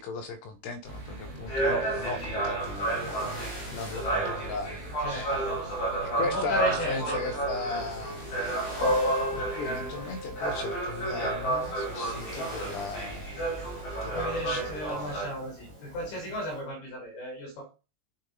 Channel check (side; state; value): right; late; 20 ms